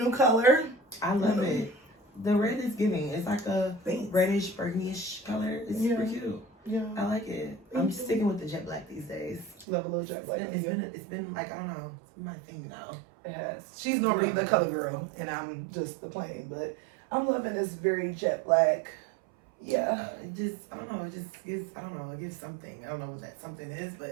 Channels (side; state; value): left; drops out; at 9.7 s